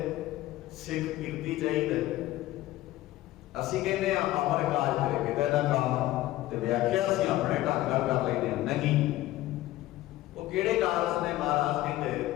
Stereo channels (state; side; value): quieter; right; 16.0 dB